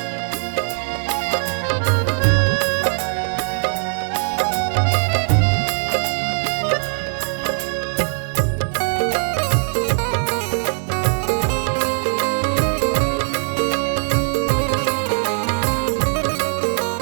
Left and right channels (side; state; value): left; silent; 61 dB below the other